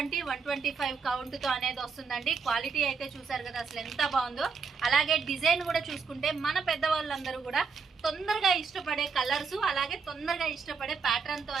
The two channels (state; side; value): quieter; left; 5.2 dB